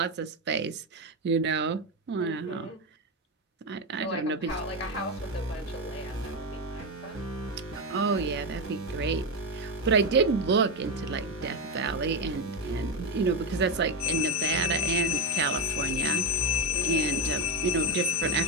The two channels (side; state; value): both; normal; correlation 0.11